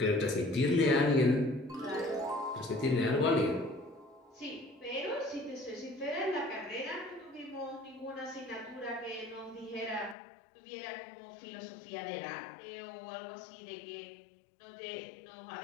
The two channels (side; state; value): right; drops out; at 10.2 s